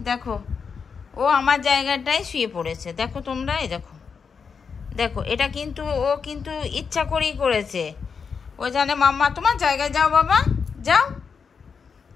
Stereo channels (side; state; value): right; quieter; 5.9 dB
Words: দেখো, ও আমার জায়গাটায় শুয়ে পড়েছে। দেখো তোমরা, এই দেখো, দেখো, এটা কিন্তু ও কিন্তু ইচ্ছা করেই করেছে। ও জানে মাম্মা তোমার জায়গায় যাও বাবা, যাও।